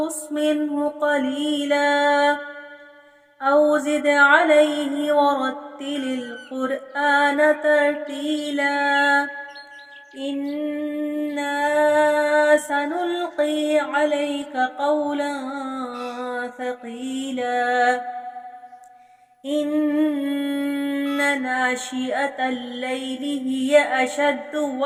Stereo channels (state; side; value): identical; both; correlation 1.00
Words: منه قليلا أو زد عليه ورتل القرآن ترتيلا إنا سنلقي عليك قولا ثقيلا إن ناشئة الليل هي أشد